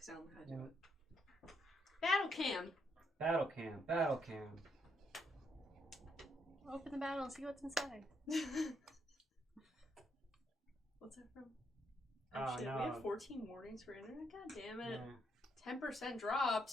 I don't know how to do it. Battle cam! Battle cam, battle cam. Open the battle and see what's inside. What's that from? Oh, Shit, no. we have 14 warnings for internet? God damn it. Yeah, 10%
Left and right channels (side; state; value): both; normal; correlation 0.76